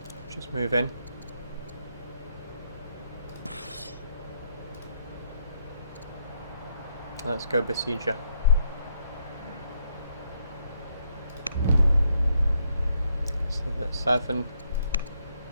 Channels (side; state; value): both; inverted; correlation -0.74